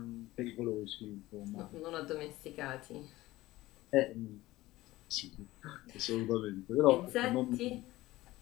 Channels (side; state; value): right; quieter; 17.7 dB